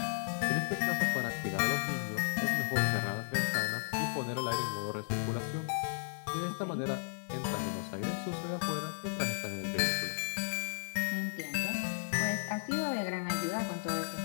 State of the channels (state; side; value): silent; right; digital silence